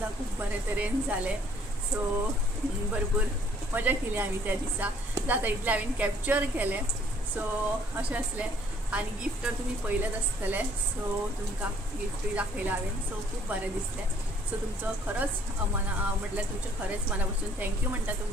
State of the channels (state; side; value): normal; both; correlation 0.62